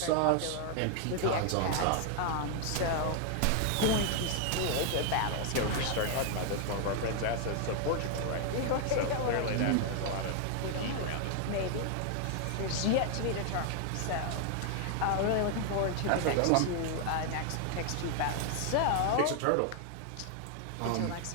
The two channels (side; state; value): both; different; correlation 0.00